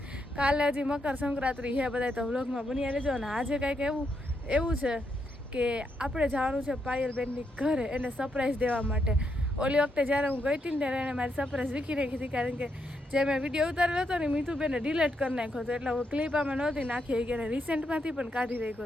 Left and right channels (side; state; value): both; normal; correlation 0.80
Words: કાલે હજી મકર સંક્રાંતિ છે. બધા તો વ્લોગમાં બન્યા રહેજો. અને આજે કાંઈક એવું છે કે આપણે જવાનું છે પાયલબેનની ઘરે એને સરપ્રાઈઝ દેવા માટે. ઓલી વખતે જ્યારે હું ગઈ હતી ને ત્યારે એને મારી સરપ્રાઈઝ વીખી નાખી હતી, કારણ કે જે મેં વિડીયો ઉતારેલો હતો ને મીઠુબેને ડિલીટ કરી નાખ્યો હતો. એટલે હું ક્લિપ આમાં નહોતી નાખી કે રિસેન્ટમાંથી પણ કાઢી